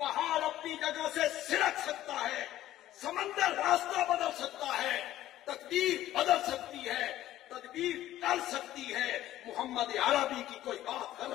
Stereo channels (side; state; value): right; quieter; 13.9 dB